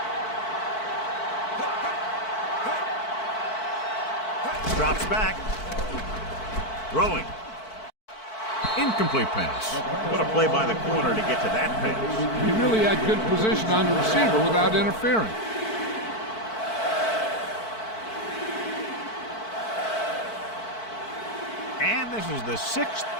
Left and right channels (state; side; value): late; right; 4.5 ms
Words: Drops back. Throwing. Incomplete pass. What a play by the corner to get to that pass. He really had good position on the receiver without interfering. And this is the 6th